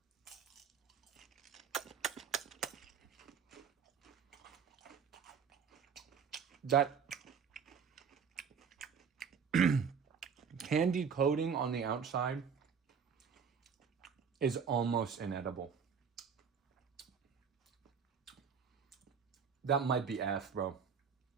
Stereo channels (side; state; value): left; quieter; 6.6 dB